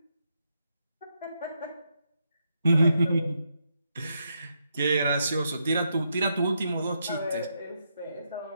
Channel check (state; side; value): inverted; both; correlation -0.81